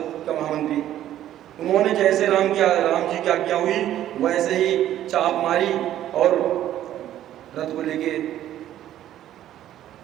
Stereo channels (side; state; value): left; quieter; 12.2 dB